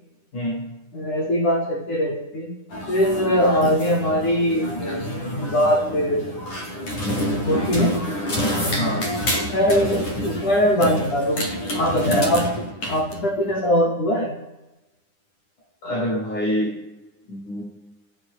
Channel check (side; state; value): right; late; 10 ms